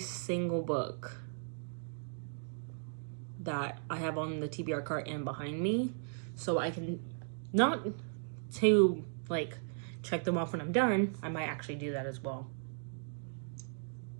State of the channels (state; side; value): silent; left; digital silence